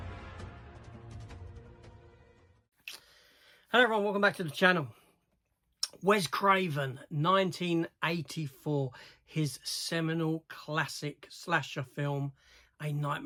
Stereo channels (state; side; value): identical; both; correlation 1.00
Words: Hello everyone, welcome back to the channel. Wes Craven, 1984, his seminal classic slasher film, A